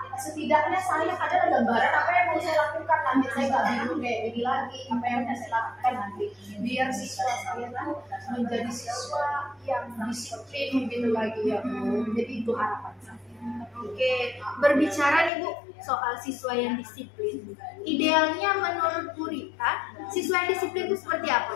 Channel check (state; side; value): drops out; right; at 15.3 s